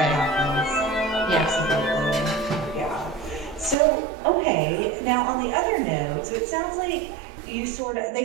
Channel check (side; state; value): left; drops out; at 3.8 s